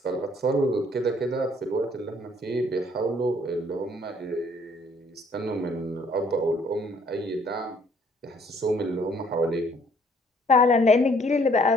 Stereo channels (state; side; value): normal; both; correlation 0.62